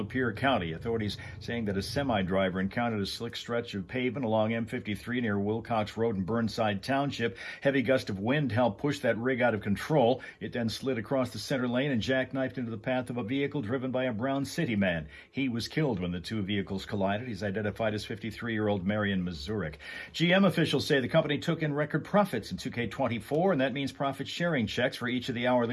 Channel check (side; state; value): both; identical; correlation 1.00